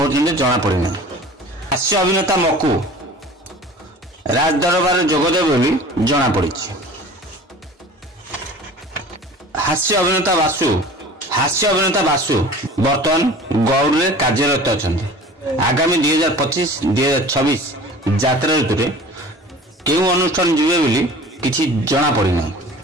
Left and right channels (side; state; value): both; normal; correlation 0.42